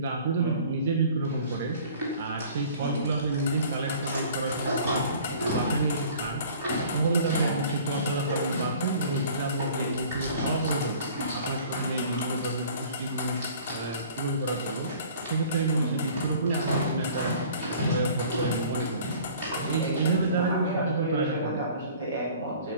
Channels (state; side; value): inverted; both; correlation -0.49